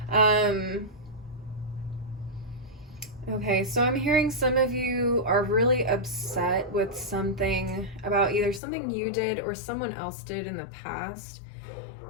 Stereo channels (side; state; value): right; drops out; at 8.6 s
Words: Okay, so I'm hearing some of you are really upset with something about either something you did or someone else did in the past,